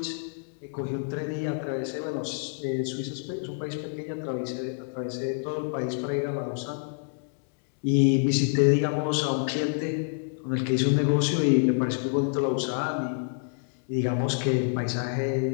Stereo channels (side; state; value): right; silent; digital silence